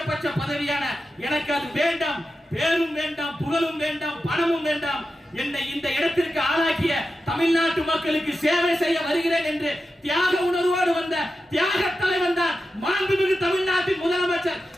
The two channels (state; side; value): normal; both; correlation 0.91